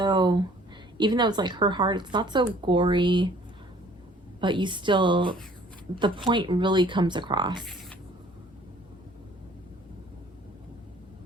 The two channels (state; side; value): normal; both; correlation 0.55